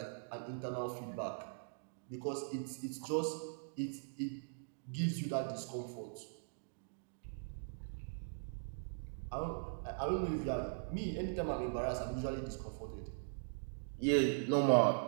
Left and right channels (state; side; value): silent; left; digital silence